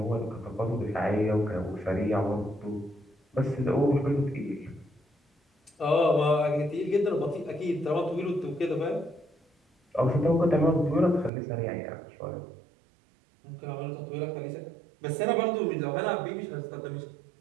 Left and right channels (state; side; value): drops out; left; at 11.3 s